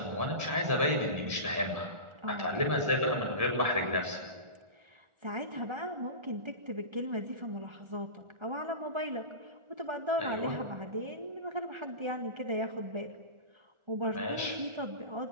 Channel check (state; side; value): late; left; 1.4 ms